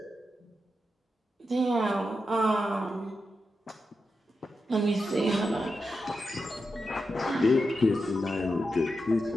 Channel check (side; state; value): both; normal; correlation 0.88